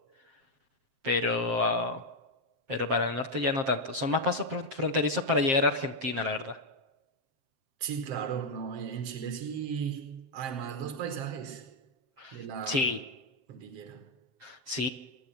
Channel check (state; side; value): late; left; 7.6 ms